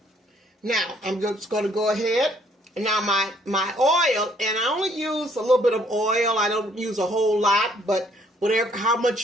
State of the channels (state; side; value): normal; both; correlation 0.64